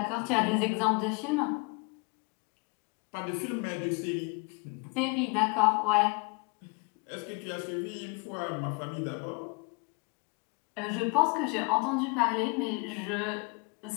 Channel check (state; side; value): quieter; right; 31.6 dB